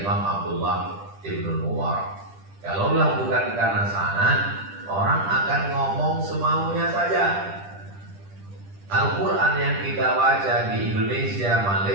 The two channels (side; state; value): left; late; 10 ms